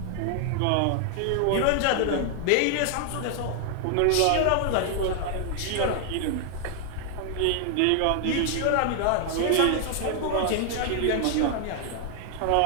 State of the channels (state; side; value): different; both; correlation 0.00